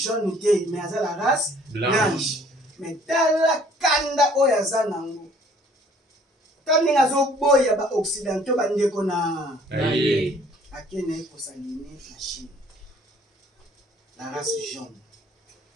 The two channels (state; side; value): normal; both; correlation 0.57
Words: te mais aza la race blanche mais tala kanda oyo aza nango ta ndenge azoboya baoccidentaux bandeko na akende kosaline na Chine la race jaune